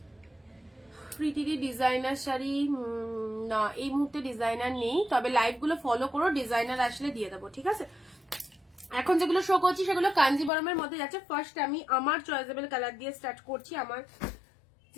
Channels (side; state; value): right; drops out; at 10.5 s